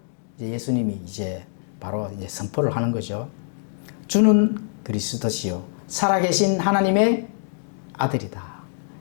이제 예수님이 이제 바로 이제 선포를 하는 거죠. 주는 그리스도시요 살아계신 하나님의 아들이다.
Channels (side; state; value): right; silent; digital silence